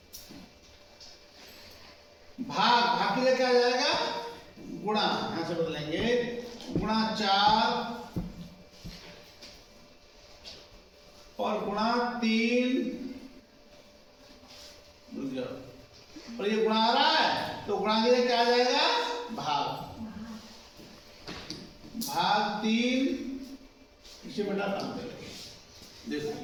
भाग की जगह क्या आ जाएगा गुणा, यहां से बदलेंगे गुणा 4 और गुणा 3 और ये गुणा आ रहा है तो गुणा की जगह क्या आ जाएगा भाग 3 इसे बेटा काम करेंगे। देखो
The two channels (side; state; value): both; identical; correlation 1.00